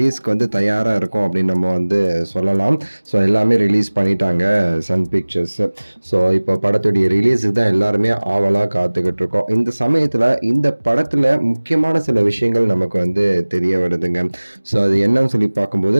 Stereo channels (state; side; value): inverted; both; correlation -1.00